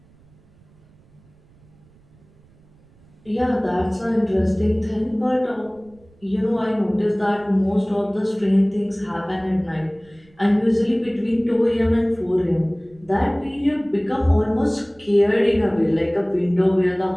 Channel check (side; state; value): right; noise; rumble, 29 dB below the sound